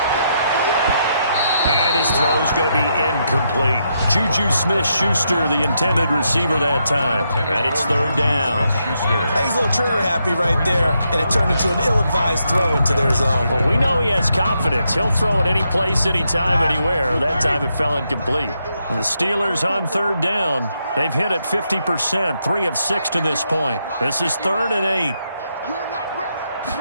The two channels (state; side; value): inverted; both; correlation -0.80